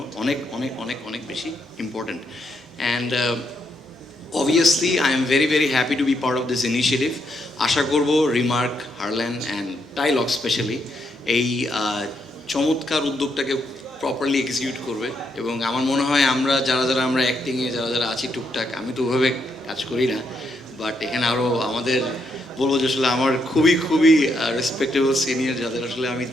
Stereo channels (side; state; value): both; normal; correlation 0.78